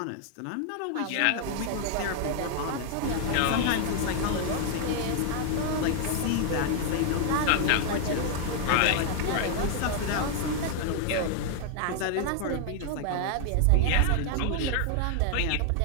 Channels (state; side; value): different; both; correlation 0.00